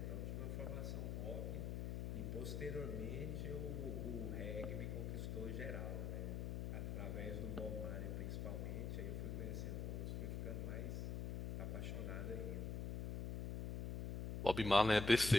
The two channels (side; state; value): left; noise; hum, 2 dB below the sound